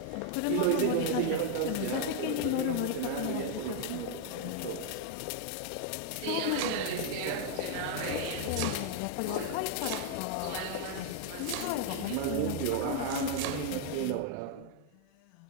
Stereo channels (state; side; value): different; both; correlation 0.00